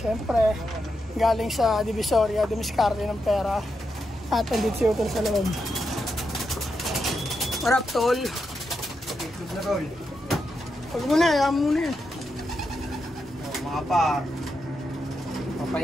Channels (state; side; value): normal; both; correlation 0.85